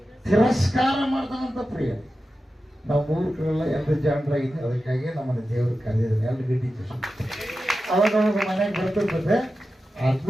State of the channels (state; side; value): normal; both; correlation 0.92